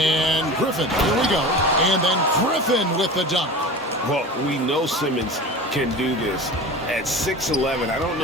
Griffin, here we go. And then Griffin with the dunk. Well, we know Simmons can do this. At 6'11", I don't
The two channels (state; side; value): normal; both; correlation 0.33